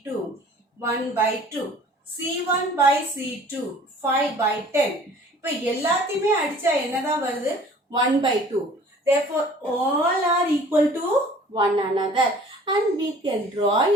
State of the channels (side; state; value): both; normal; correlation 0.50